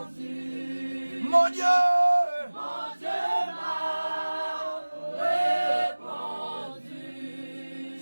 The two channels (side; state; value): both; inverted; correlation -1.00